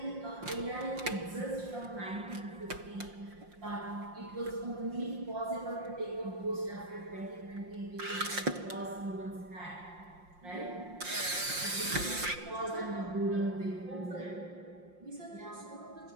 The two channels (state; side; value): late; left; 5.6 ms